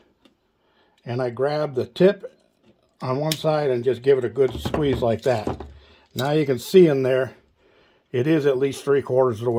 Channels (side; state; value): both; identical; correlation 1.00